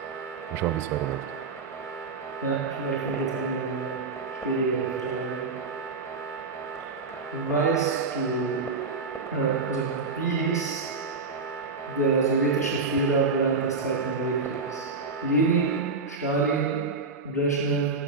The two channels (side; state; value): left; quieter; 4.3 dB